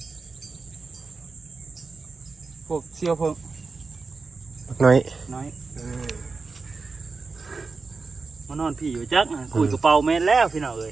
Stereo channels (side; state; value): left; quieter; 4.3 dB